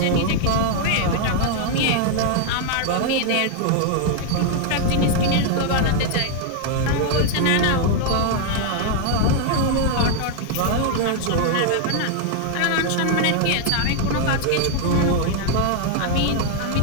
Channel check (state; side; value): different; both; correlation 0.00